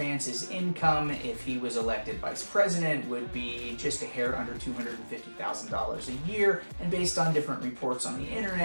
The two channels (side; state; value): both; inverted; correlation -1.00